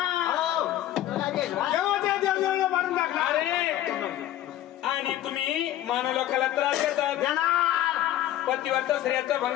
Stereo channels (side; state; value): right; quieter; 13.1 dB